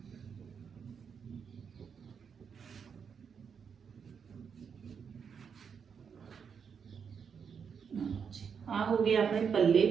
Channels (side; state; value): left; quieter; 6.7 dB